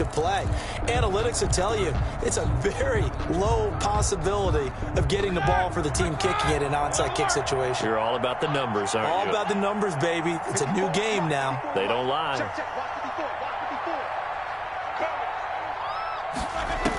play. Analytics will tell you it's a very low possibility of getting the ball for the team kicking it in an onside kick situation. You're all about the numbers, aren't you? All about the numbers, baby. It's a new game now. They don't lie.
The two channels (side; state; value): both; identical; correlation 1.00